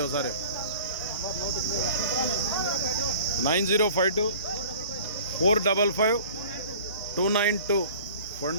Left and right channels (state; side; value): inverted; both; correlation -0.45